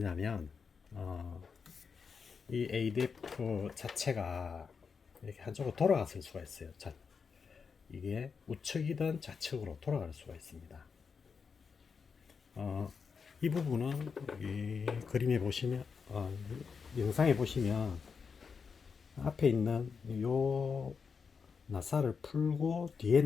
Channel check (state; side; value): quieter; right; 5.7 dB